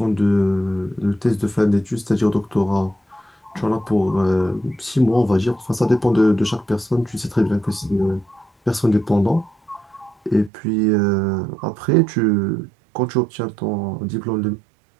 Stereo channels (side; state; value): left; drops out; at 10.5 s